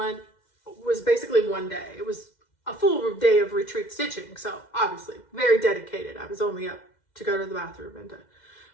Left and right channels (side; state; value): right; late; 2.1 ms